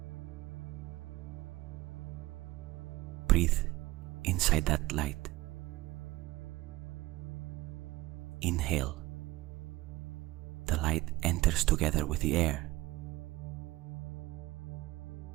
Breathe inside that light. Inhale the enters together with the air.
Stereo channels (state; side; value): quieter; left; 18.6 dB